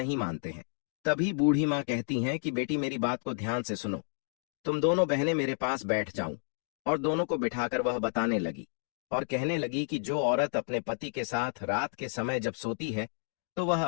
मानते हैं। तभी बूढ़ी माँ कहती हैं कि बेटी, मेरी बात को ध्यान से सुनो, तुम दोनों बहनें मेरे पास बैठ जाऊं। और दोनों को बिठाकर वह बताने लगी और कहने लगी कि जो औरत अपने पति के साथ रात के समय जब सोती है तो वह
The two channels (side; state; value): right; silent; digital silence